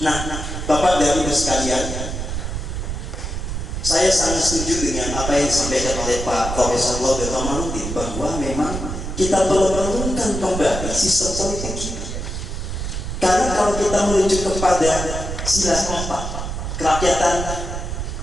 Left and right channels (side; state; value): right; noise; rumble, 5 dB below the sound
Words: Nah, Bapak dan Ibu sekalian, saya sangat setuju dengan apa yang disampaikan oleh Pak Profesor Laude Romanudin, bahwa memang kita perlu merenungkan kembali sistem politik kita. Karena kalau kita merujuk kepada sila 4, kerakyatan